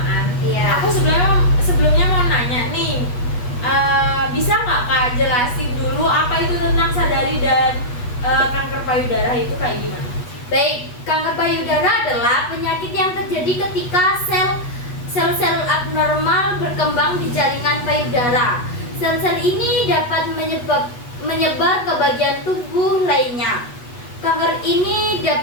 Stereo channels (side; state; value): right; late; 8.2 ms